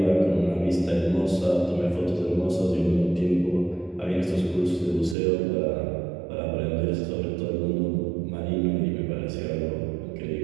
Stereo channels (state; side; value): drops out; left; at 5.2 s